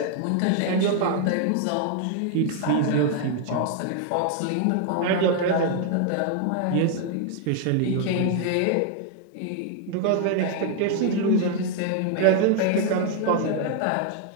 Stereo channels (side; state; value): both; different; correlation 0.00